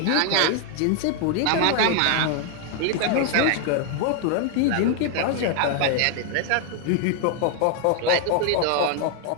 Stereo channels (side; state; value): both; different; correlation 0.00